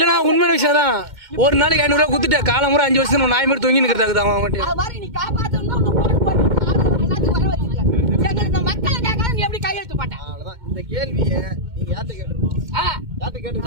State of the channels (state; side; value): late; left; 2.1 ms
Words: உண்மையான விஷயம் தான். ஒரு நாளைக்கு 500 ரூபா கொடுத்துட்டு காலம் முறை 5 வருஷம் நாய் மாதிரி தொங்கி நிற்கிறதாக்குது அவன் மட்டும். இந்த கேள்வியை நீங்க யார்கிட்ட கேட்டுருக்கோம்? யார்கிட்ட